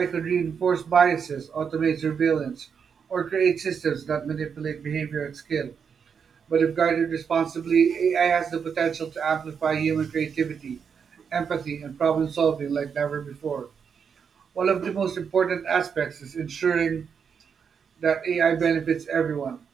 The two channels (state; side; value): quieter; left; 6.7 dB